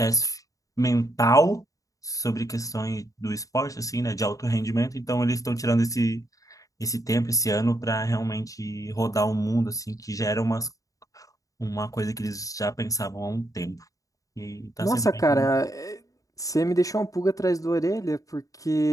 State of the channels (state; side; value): late; right; 0.16 ms